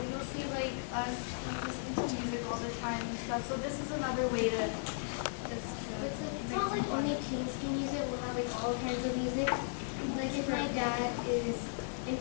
you'll see, like, us listening to music all the time and stuff, so this is another way to just, It's not like only teens can use it. We'll have like all kinds of music. Like if my dad is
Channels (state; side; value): silent; right; digital silence